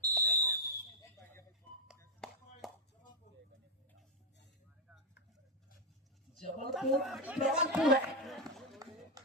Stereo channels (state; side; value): normal; both; correlation -0.01